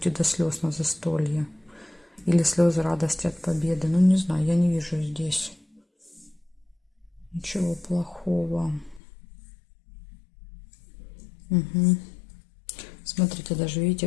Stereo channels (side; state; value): right; drops out; at 9.0 s